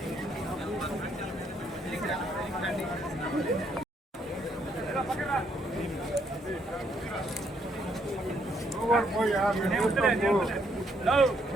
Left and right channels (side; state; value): both; normal; correlation 0.72